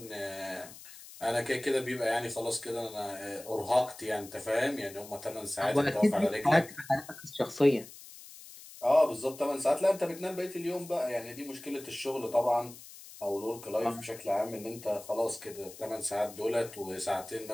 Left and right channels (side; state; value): left; noise; hiss, 17 dB below the sound